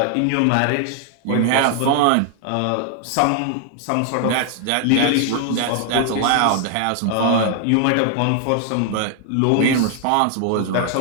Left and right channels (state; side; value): different; both; correlation 0.00